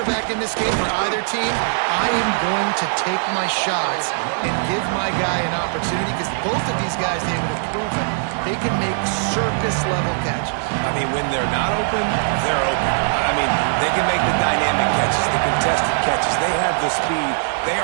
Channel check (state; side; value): silent; left; digital silence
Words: in this game for either team, I am going to take my shots and give my guy an opportunity, because both of these guys, David, have proven they can make circus-level catches. I mean, when they're not open, they're open. I mean, they can make the dynamic catches, the contested catches. They have the speed. They